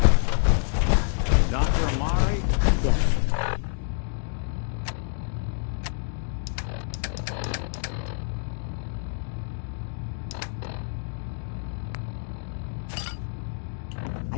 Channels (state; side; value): silent; right; digital silence